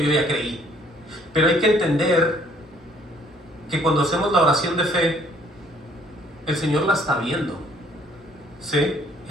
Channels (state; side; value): normal; both; correlation 0.61